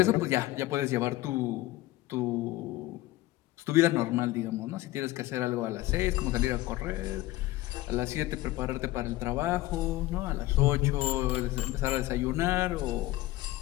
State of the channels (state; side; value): quieter; right; 17.2 dB